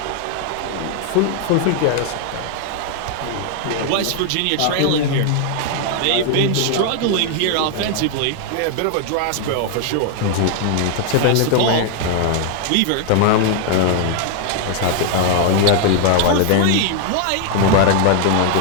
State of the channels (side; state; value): both; different; correlation 0.00